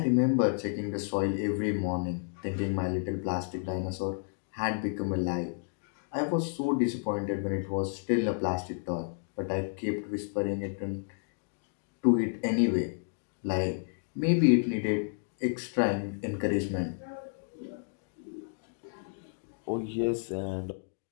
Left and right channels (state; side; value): silent; right; digital silence